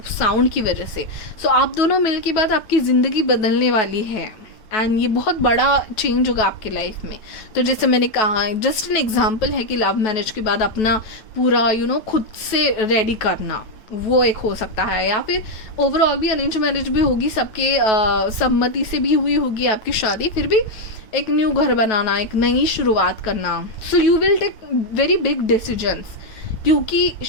साउंड की वजह से। सो आप दोनों मिल के बाद आपकी ज़िंदगी बदलने वाली है एंड ये बहुत बड़ा चेंज होगा आपके लाइफ में। तो जैसे मैंने कहा, जस्ट एन एग्जांपल है कि लव मैरिज के बाद अपना पूरा खुद से रेडी करना, वो एक हो सकता है। या फिर ओवरऑल भी अरेंज मैरिज भी होगी, सबके सम्मति से भी हुई होगी आपकी शादी, फिर भी एक न्यू घर बनाना, एक नई शुरुआत करना। So you will take very big decisions, क्योंकि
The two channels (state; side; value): late; right; 9.2 ms